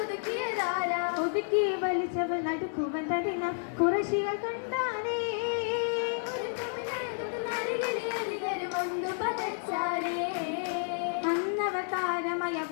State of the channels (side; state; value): right; silent; digital silence